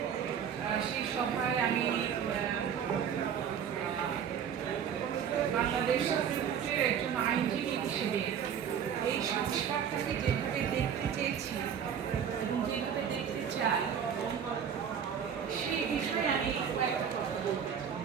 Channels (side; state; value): left; quieter; 8.0 dB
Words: সেই সভায় আমি বাংলাদেশ সুপ্রিম কোর্টের একজন আইনজীবী হিসেবে এই সংস্কারটাকে যেভাবে দেখতে চেয়েছি এবং যেভাবে দেখতে চাই সেই বিষয়ে আমি কয়েকটা কথা বলতে